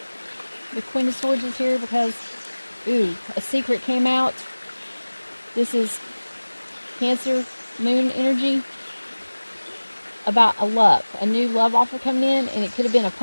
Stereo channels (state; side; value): inverted; both; correlation -1.00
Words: The Queen of Swords is here because, a secret came out. This is Cancer Moon energy about a new love offer coming in, and it could have been a